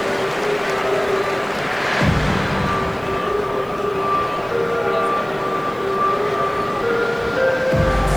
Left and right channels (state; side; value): noise; left; hiss, 28 dB below the sound